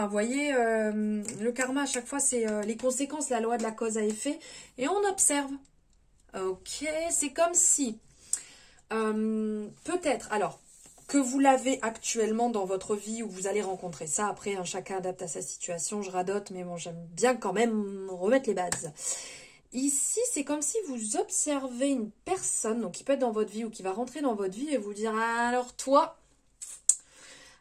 Vous voyez, le karma, à chaque fois, c'est les conséquences, la loi de la cause à effet. Et on observe. Ok, c'est comme si, peut-être, alors, que vous l'avez actuellement dans votre vie ou vous allez rencontrer ça. Après, hein, chacun adapte à sa situation, je radote, mais bon, j'aime bien quand même remettre les bases. Ici, c'est comme si vous observez une personne, donc qui peut être dans votre vie ou qui va rentrer dans votre vie et vous dire, alors toi,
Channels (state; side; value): identical; both; correlation 1.00